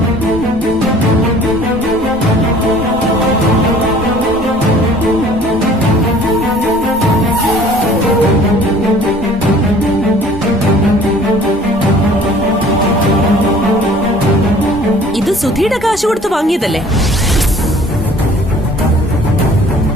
ഇത് സുധിയുടെ കാശ് കൊടുത്ത് വാങ്ങിയതല്ലേ?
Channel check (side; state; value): both; normal; correlation 0.51